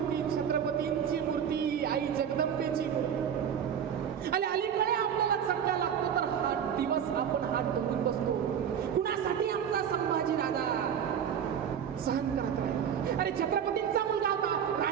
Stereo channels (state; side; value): quieter; left; 8.4 dB